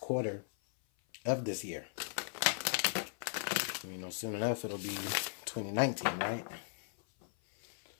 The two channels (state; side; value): silent; right; 53 dB below the other